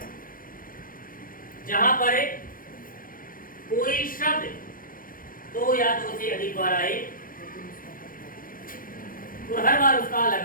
जहां पर कोई शब्द दो या दो से अधिक बार आए और हर बार उसका अलग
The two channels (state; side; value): late; right; 0.40 ms